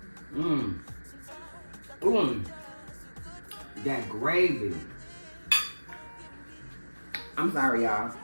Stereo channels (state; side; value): inverted; both; correlation -1.00